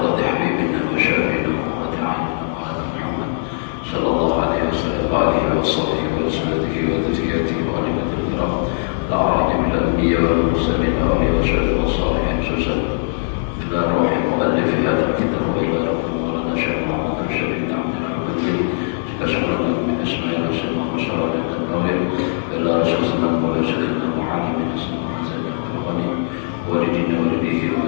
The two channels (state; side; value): silent; right; digital silence